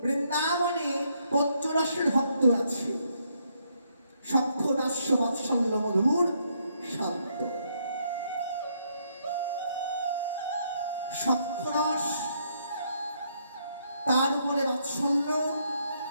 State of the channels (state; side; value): inverted; both; correlation -0.74